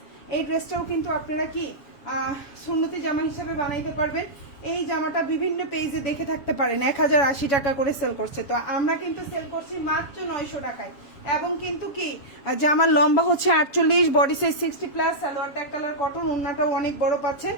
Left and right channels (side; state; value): right; late; 7.3 ms